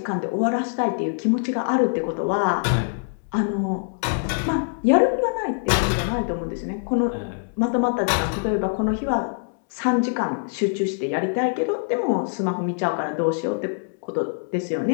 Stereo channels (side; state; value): right; silent; 63 dB below the other